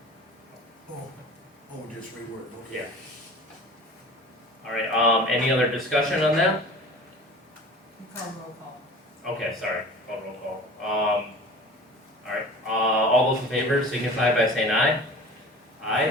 supported. Just reword, okay. Yeah. All right, any other discussion on that? You call roll call. Okay, sorry, call roll call. All right, all those in favor signify by saying aye.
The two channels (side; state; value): both; normal; correlation 0.40